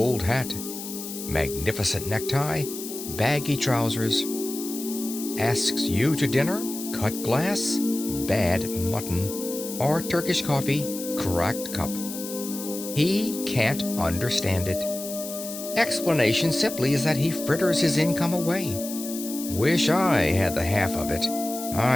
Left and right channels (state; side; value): noise; left; hiss, 9 dB below the sound